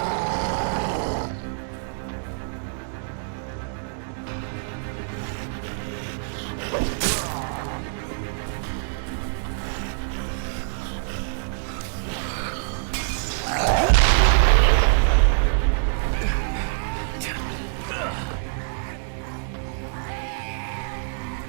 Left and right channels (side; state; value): left; silent; 62 dB below the other